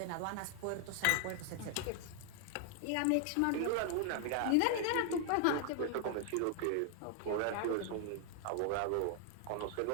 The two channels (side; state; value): both; different; correlation 0.00